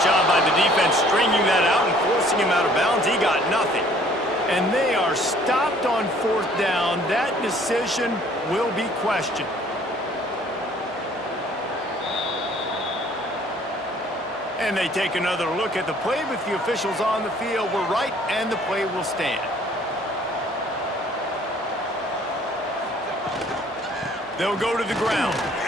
job by the defense stringing that out and forcing him out of bounds. He got nothing. And they are stopped on 4th down. That decision will be questioned. And they take another look at the play with the officials on the field. We're right, and the play will stand. They'll go to the ground.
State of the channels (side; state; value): both; normal; correlation 0.57